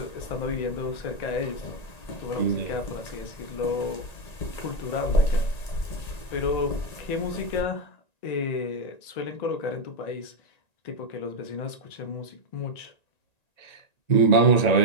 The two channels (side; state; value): right; late; 1.9 ms